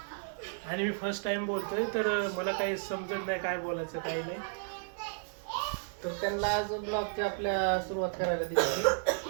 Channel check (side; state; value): left; silent; digital silence